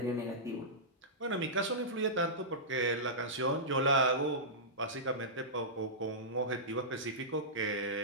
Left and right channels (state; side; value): normal; both; correlation -0.16